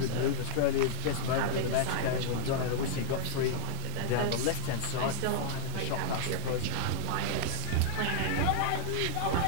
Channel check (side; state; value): both; different; correlation -0.01